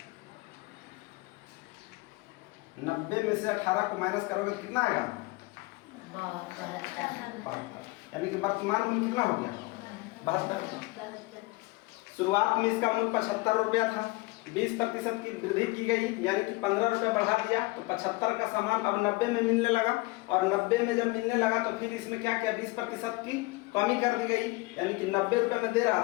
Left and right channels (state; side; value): quieter; right; 23.2 dB